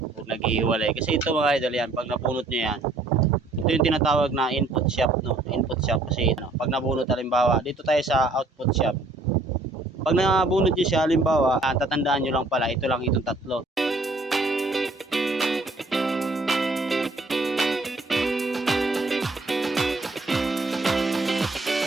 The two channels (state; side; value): quieter; left; 3.1 dB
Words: o naghihiwalay. Kasi ito mga idol yan, pag napunot nyo yan, ito yung tinatawag na input shop, no? Input shop kasi no, pag nabunot halimbawa, dito tayo sa output shop. Pag nabunot nyo siya halimbawa, tatandaan nyo lang pala, ito lang itong tatlo.